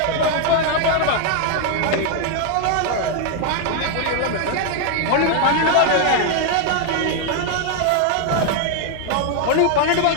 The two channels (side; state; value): both; different; correlation 0.00